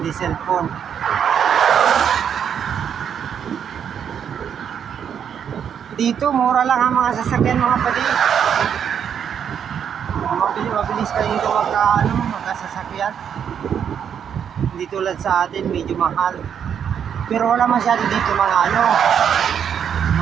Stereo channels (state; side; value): quieter; left; 8.2 dB